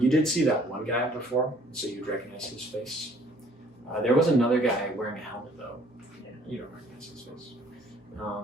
You did see that one guy before, so you'd recognize his face. There was another guy wearing a helmet, though. Yeah, you don't recognize his face.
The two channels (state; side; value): normal; both; correlation 0.59